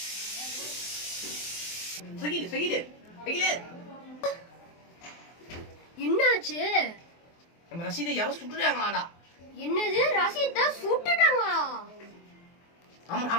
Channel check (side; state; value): right; late; 23 ms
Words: என்னாச்சு? நம்ம ரசீதை யாரோ சுட்டுட்டாங்களாடா. என்னது? ரசீதை சுட்டுட்டாங்களா?